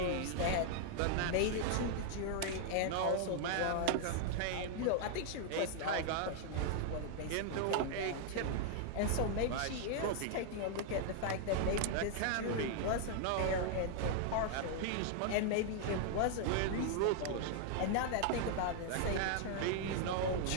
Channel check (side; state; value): both; different; correlation 0.00